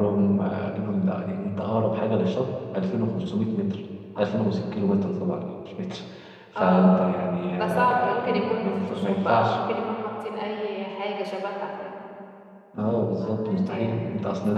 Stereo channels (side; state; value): both; identical; correlation 1.00